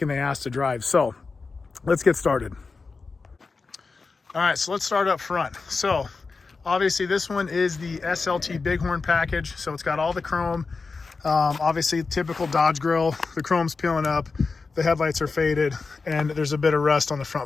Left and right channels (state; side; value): quieter; right; 4.3 dB